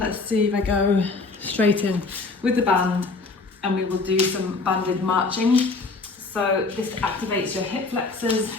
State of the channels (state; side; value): quieter; right; 3.8 dB